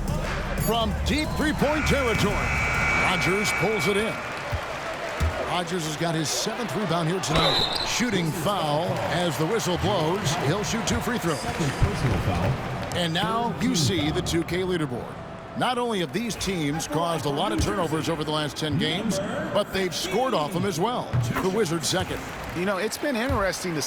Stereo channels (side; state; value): both; identical; correlation 1.00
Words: From deep three-point territory, Rogers pulls it in. Rogers has got his 7th rebound here tonight. Shooting foul as the whistle blows. He'll shoot 2 free throws. And now you see the 2K leaderboard. Not only have these teams caused a lot of turnovers over the last 10 games, but they've scored off them as well. The Wizards second. You know, it's been interesting to